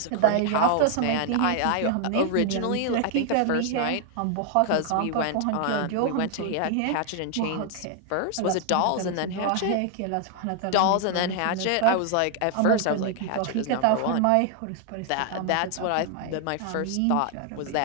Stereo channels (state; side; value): different; both; correlation 0.00